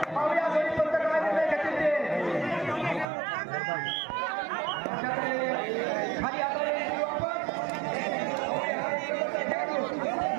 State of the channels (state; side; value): drops out; left; at 3.1 s